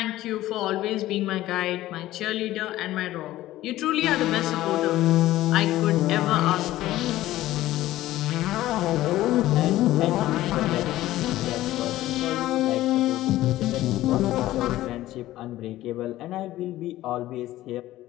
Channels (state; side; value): quieter; right; 15.4 dB